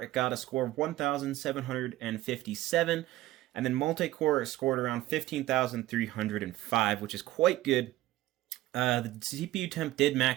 got a score of 1,757, and then multi-core scored around 15,305, which is quite good. The CPU temp did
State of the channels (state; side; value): quieter; left; 16.2 dB